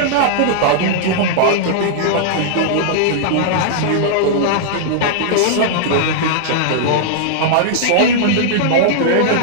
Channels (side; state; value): both; different; correlation -0.01